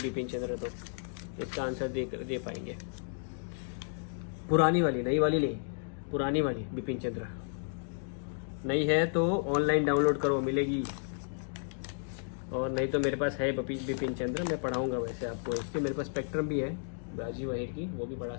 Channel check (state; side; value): silent; right; digital silence